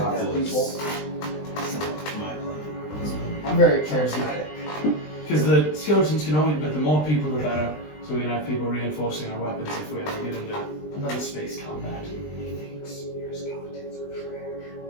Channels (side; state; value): right; late; 20 ms